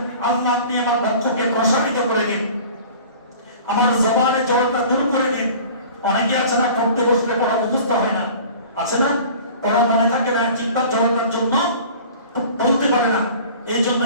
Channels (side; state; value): both; inverted; correlation -0.44